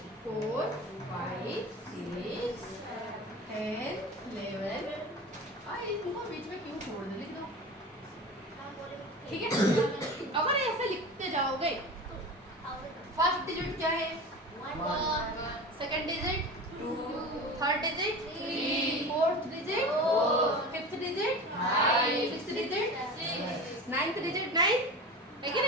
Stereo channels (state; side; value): normal; both; correlation 0.32